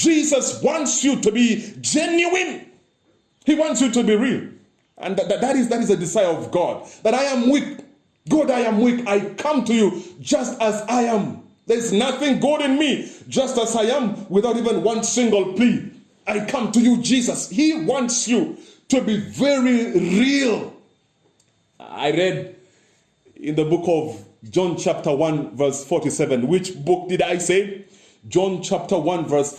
wants you to be genuine. He wants you to be real. And that is a desire of God. That I am weak. God, I am weak. I come to you just as I am. There's nothing good in me, just as I am, without even one single plea. I come to you, Jesus. He wants you to be very real. I read in the book of John chapter 1 verse 47. Which book did I say? John chapter 1 verse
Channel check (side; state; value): both; identical; correlation 1.00